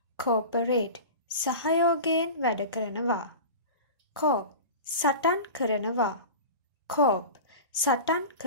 cooperate සහයෝගයෙන් වැඩ කරනවා cope සටන් කරනවා cope සටන්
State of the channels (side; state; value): both; inverted; correlation -0.32